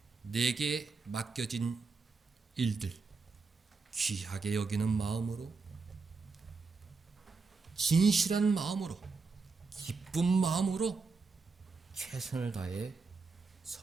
내게 맡겨진 일들 귀하게 여기는 마음으로, 진실한 마음으로, 기쁜 마음으로 최선을 다해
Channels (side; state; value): left; quieter; 4.4 dB